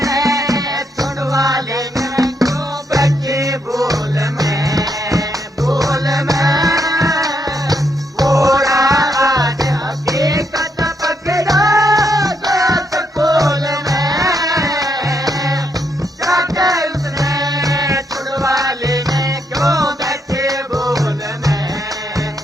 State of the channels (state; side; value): normal; both; correlation 0.77